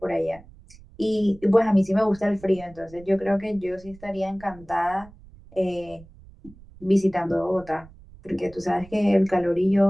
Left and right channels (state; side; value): noise; right; rumble, 22 dB below the sound